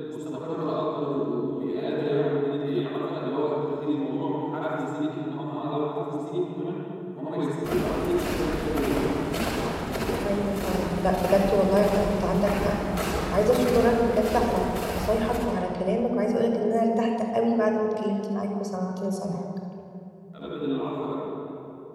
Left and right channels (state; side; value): identical; both; correlation 1.00